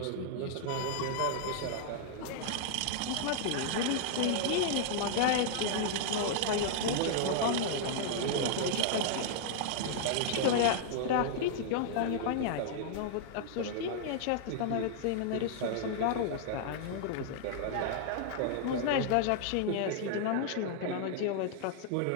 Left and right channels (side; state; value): both; different; correlation -0.01